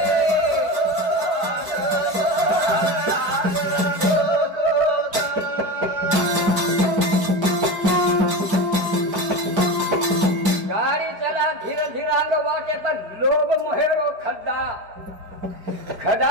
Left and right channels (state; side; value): late; left; 4.9 ms